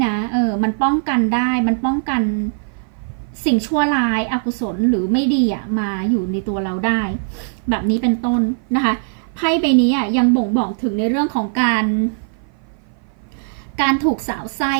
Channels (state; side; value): silent; left; 56 dB below the other